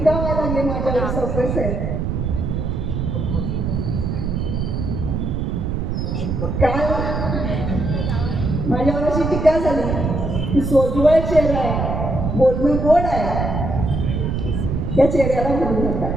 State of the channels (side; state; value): right; noise; rumble, 1 dB below the sound